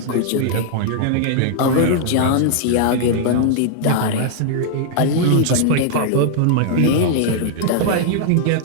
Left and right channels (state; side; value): different; both; correlation -0.01